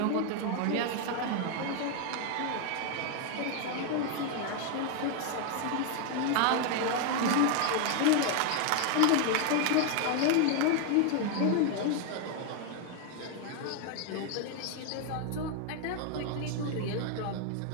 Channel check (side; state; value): both; different; correlation 0.00